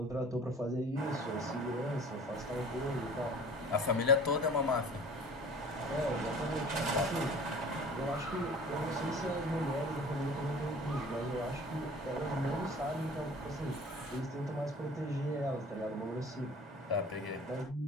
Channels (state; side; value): normal; both; correlation 0.45